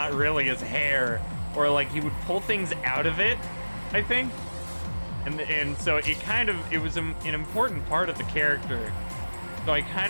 really his hair, or like he would pull things out of it, I think. And so it was an important part of the character. So I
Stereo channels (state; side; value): inverted; both; correlation -1.00